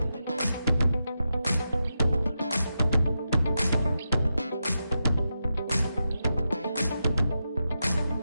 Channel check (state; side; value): inverted; both; correlation -0.88